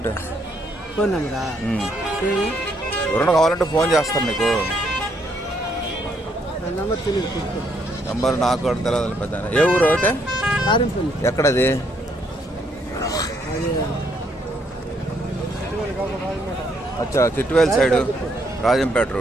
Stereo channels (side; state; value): both; normal; correlation 0.72